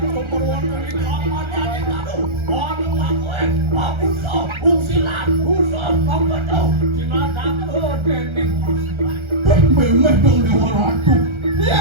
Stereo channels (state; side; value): late; left; 1.3 ms